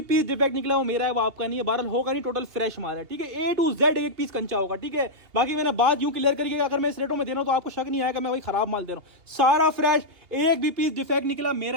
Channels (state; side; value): late; left; 2.8 ms